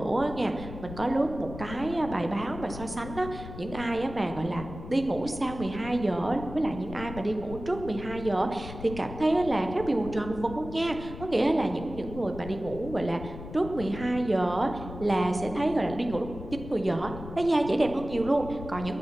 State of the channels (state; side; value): noise; left; rumble, 11 dB below the sound